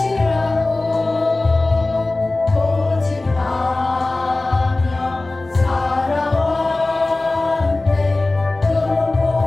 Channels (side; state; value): right; quieter; 3.0 dB